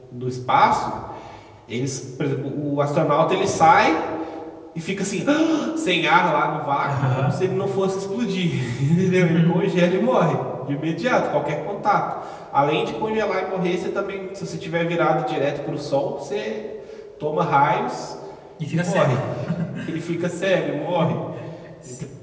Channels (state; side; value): identical; both; correlation 1.00